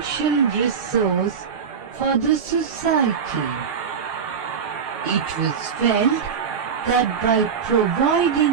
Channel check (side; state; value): left; quieter; 6.7 dB